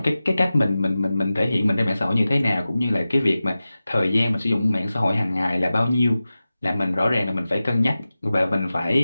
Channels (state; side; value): inverted; both; correlation -0.95